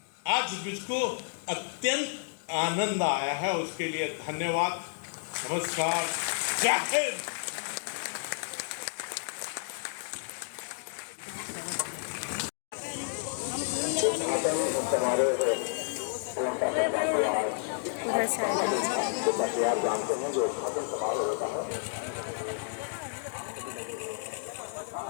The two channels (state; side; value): silent; right; digital silence